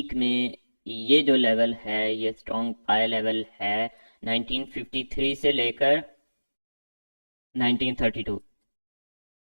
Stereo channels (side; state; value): both; inverted; correlation -1.00